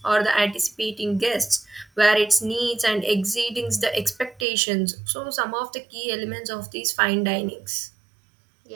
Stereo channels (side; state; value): left; drops out; at 4.5 s